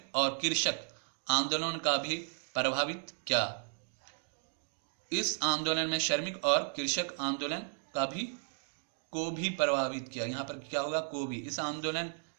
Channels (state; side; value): silent; left; digital silence